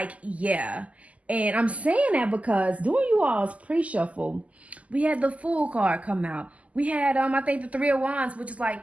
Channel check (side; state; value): left; late; 0.070 ms